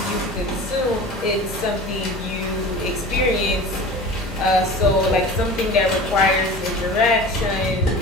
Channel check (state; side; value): normal; both; correlation 0.37